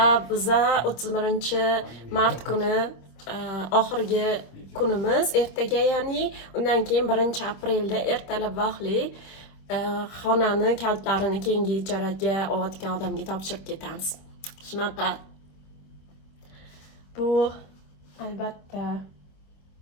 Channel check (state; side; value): late; right; 26 ms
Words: biza 31-mart kuni oxirgi kunimiz, ertaga ya'ni undan keyin 1-aprelda ertalab vaqtli xonani kalitlarini keyingi ijaraga olayotgan odamga topshirib ketamiz. Shunaqa. Bu albatta